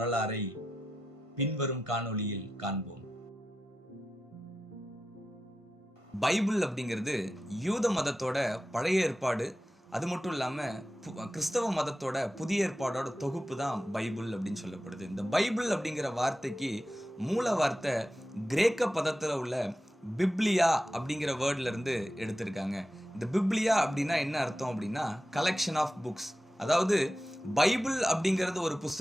பின்வரும் காணொளியில் காண்போம். பைபிள் அப்படிங்கிறது யூத மதத்தோட பழைய ஏற்பாடு, அது மட்டும் இல்லாமல் கிறிஸ்தவ மதத்தோட புதிய ஏற்பாடோட தொகுப்பு தான் பைபிள் அப்படின்னு சொல்லப்படுது. இந்த பைபிள் அப்படிங்கிற வார்த்தைக்கு மூல வார்த்தை கிரேக்க பதத்தில் உள்ள பிப்லியா அப்படிங்கிற வேர்ட்ல இருந்து எடுத்திருக்காங்க. இந்த பிப்லியா அப்படின்னா என்ன அர்த்தம் அப்படின்னா கலெக்ஷன் ஆஃப் புக்ஸ். அதாவது பைபிள் அப்படிங்கிறது ஒரு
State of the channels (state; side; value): normal; both; correlation 0.92